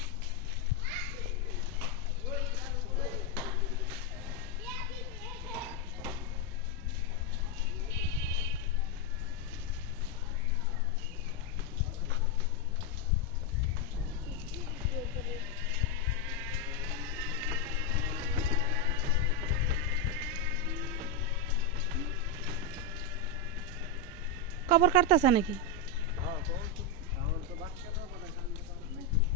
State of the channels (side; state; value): right; quieter; 3.2 dB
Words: কবর কাটতেছে নাকি?